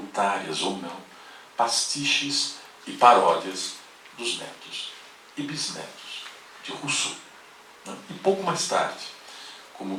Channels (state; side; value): identical; both; correlation 1.00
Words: ou não, pastiches e paródias dos netos e bisnetos de Rousseau. E pouco mais tarde, como